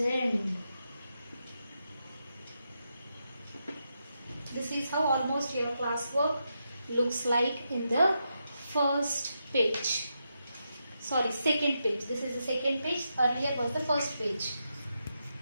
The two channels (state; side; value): inverted; both; correlation -0.85